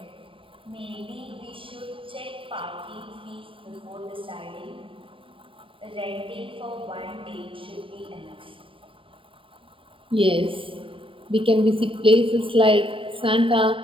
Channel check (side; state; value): left; late; 0.25 ms